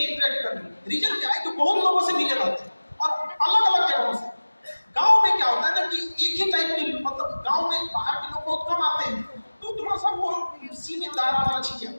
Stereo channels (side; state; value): both; inverted; correlation -1.00